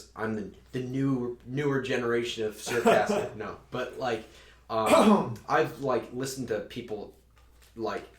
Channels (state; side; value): identical; both; correlation 1.00